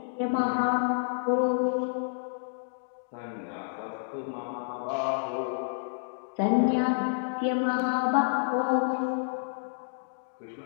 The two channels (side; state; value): right; silent; digital silence